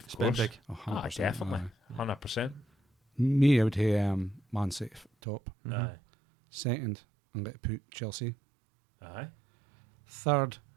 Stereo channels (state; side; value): drops out; left; at 5.1 s